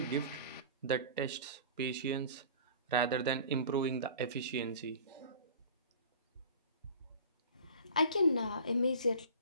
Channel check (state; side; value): inverted; both; correlation -0.41